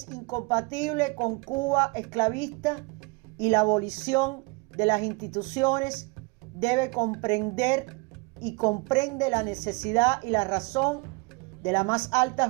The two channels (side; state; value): left; quieter; 29.0 dB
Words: incompatible con Cuba esclavista, y la abolición de las instituciones debe comprender y comprende la necesidad y la razón de la más alta